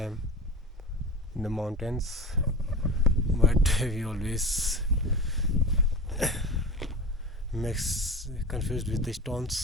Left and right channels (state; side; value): normal; both; correlation 0.31